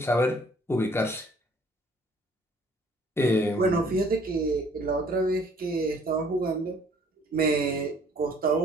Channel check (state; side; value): normal; both; correlation 0.58